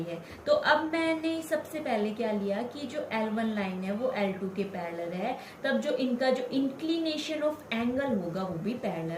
है। तो अब मैंने सबसे पहले क्या लिया कि जो L1 लाइन है वो L2 के पैरेलल है, तब जो इनका जो इंक्लिनेशन ऑफ एंगल होगा वो भी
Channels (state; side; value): identical; both; correlation 1.00